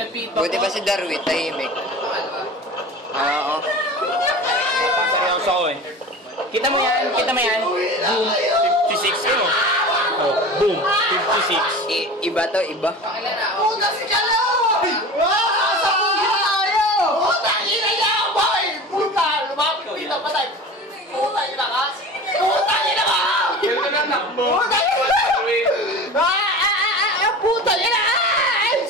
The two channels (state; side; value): normal; both; correlation 0.35